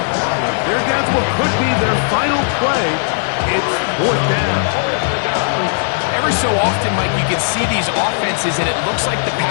They're down to what could be their final play. It's 4th down. Every so often, Mike, you can see these offenses, and it looks like the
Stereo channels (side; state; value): right; silent; digital silence